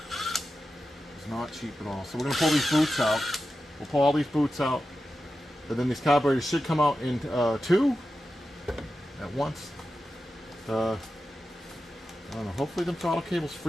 was not cheap at all. So we're gonna pull these boots out. We'll pull all these boots out, and then these carburetors should come out in two at once. I don't know. Hopefully, the throttle cables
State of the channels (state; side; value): normal; both; correlation 0.92